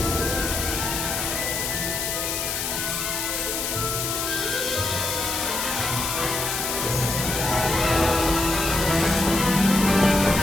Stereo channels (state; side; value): noise; left; hiss, 2 dB below the sound